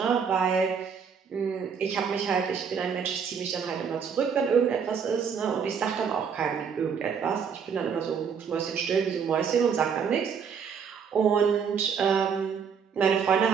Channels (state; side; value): quieter; left; 6.7 dB